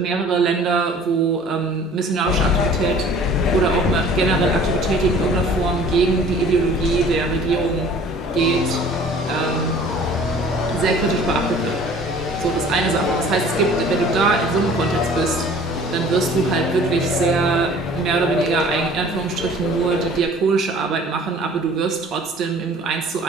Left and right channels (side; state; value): both; normal; correlation 0.49